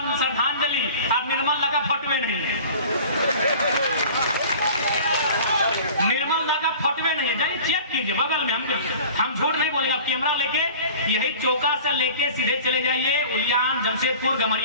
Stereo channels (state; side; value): inverted; both; correlation -0.42